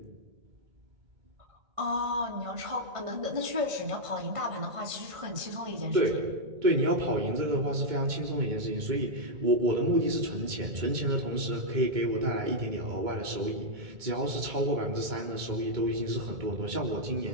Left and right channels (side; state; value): left; late; 2.2 ms